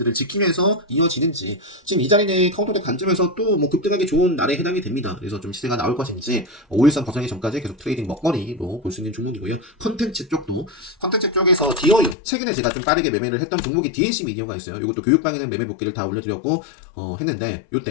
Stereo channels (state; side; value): drops out; right; at 12.2 s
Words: 지키면서 이어지는지 지금 이 자리는 카운터덱 관점에서 또 뭐 급등하기 좋은 날에 해당이 됩니다. 그래서 좀 시세가 나올 것인지 5일선 벗어나기 전까지 계속 트레이딩 먹거리로 볼 수 있는 종목이고요. 컨텐츠 쪽에서 디어유 최근에 제가 좀 빠르게 매매를 했던 종목이 DNC 미디어가 있어요. 이것도 교육방에는 매매 복귀를 다 올려드렸고 했는데